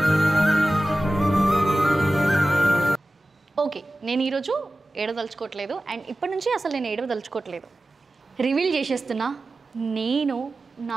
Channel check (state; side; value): normal; both; correlation 0.95